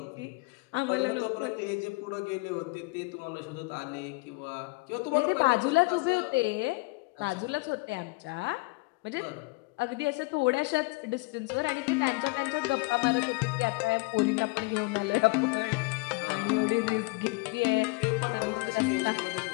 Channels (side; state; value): right; quieter; 25.9 dB